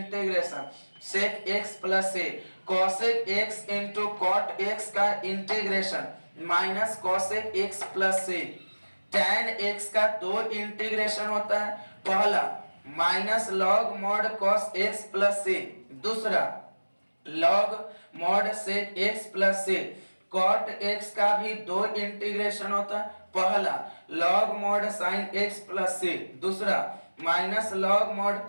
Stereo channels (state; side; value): inverted; both; correlation -1.00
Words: sec x plus a, cosec x into cot x का integration minus cosec x plus a. Tan x का दो integration होता है, पहला minus log mod cos x plus a, दूसरा log mod sec x plus a. Cot x का भी दो इंटीग्रेशन होता है, पहला log mod sine x plus a, दूसरा minus log mod